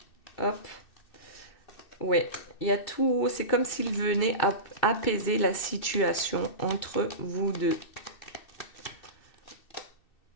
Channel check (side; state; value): right; late; 2.6 ms